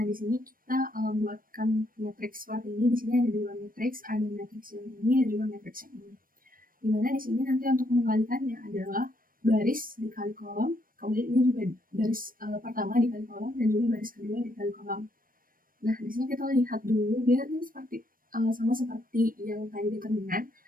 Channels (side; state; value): left; late; 0.41 ms